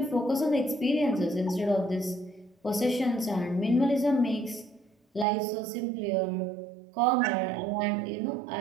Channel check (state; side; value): drops out; left; at 5.2 s